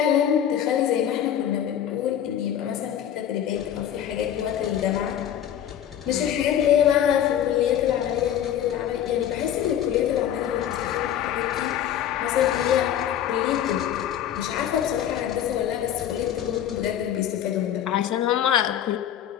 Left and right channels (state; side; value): quieter; right; 10.3 dB